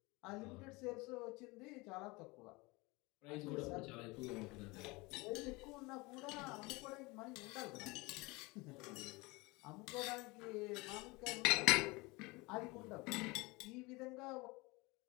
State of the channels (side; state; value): right; quieter; 24.4 dB